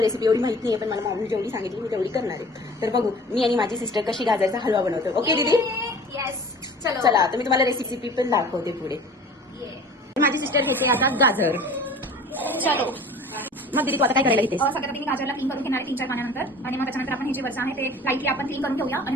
रेसिपी एवढी माहिती नाही, पण मला मम्मी जेवढी सांगितली मी तेवढी करणार आहे. तर बघू मी आणि माझी सिस्टर कशी गाजरचा हलवा बनवतो. ओके दीदी? येस. चलो चला, तर मी तुम्हाला रेसिपी पण दाखवते पुढे. माझी सिस्टर घेते आता गाजर. चलो मग दीदी तू आता काय करायला घेतेस? सगळ्यात आधी मी गाजरला क्लीन करून घेणार आहे 3-4 पाण्यानंतर, आणि मग त्याच्यानंतर आपण हे जे वरचं आहे ते लाईटली आपण क्लीन करून घेऊया आणि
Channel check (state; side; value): normal; both; correlation 0.44